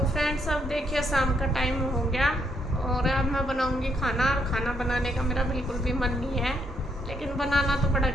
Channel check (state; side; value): normal; both; correlation 0.74